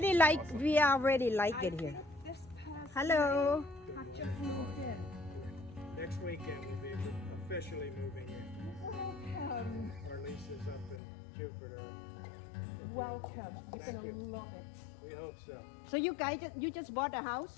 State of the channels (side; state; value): right; drops out; at 11.0 s